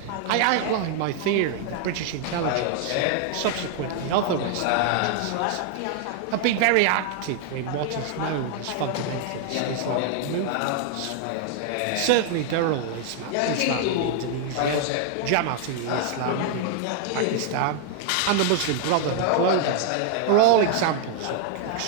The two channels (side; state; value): both; different; correlation 0.00